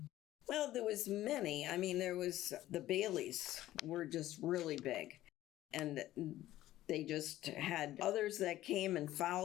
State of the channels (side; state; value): right; quieter; 14.6 dB